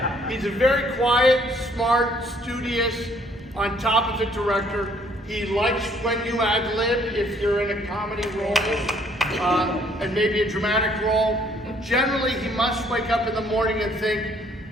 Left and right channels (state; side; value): normal; both; correlation 0.63